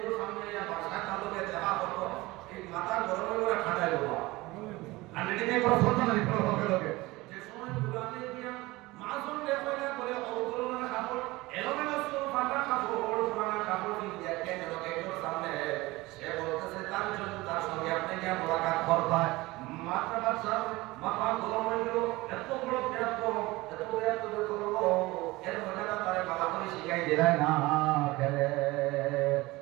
মাথা গরম করে খাটাই দেবো আর এদিকে কোনো সন্তান নেই কোনো লোকে যে সময় গুলামে দিয়া মাজন লেখা করে অবতরণের কাপড় এলোমেলো সব ফাটা কাপড় পুরানা কাপড় দিয়ে কেন লোকের সামনে সে বলতেছে তার জন্য তার সঙ্গে আপনি কি মোলাকাত করবেন মাথা বাচ্চা মাথা গরম হয়ে গেল এত বড় করলো এর মধ্যে তারে বাবা করে শিখাই দিলাই না খেলে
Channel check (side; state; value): left; quieter; 20.7 dB